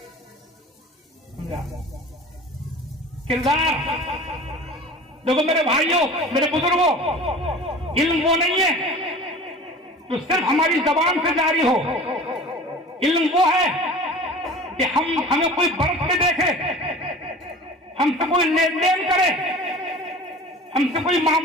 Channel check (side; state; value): both; normal; correlation 0.40